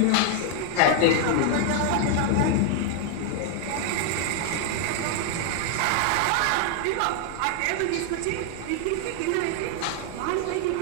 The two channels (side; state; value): both; different; correlation 0.00